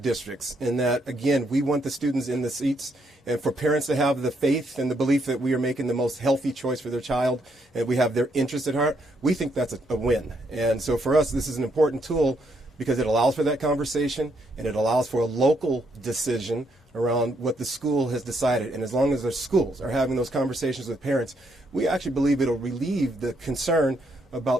And that, again, we want the students in the seats and for parents to have the faith and the belief that we are making the most healthy choice for their child and we have their interest at heart. We think that's a win. And so for us, this is an important tool because it allows for that conversation and it allows for a local decision around what the school has decided. And as long as the schools are having those conversations with parents, we actually believe it'll relieve the concern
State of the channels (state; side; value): normal; both; correlation 0.74